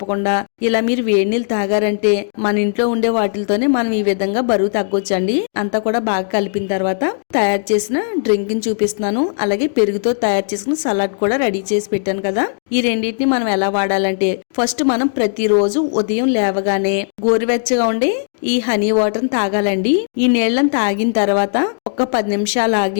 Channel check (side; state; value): right; silent; digital silence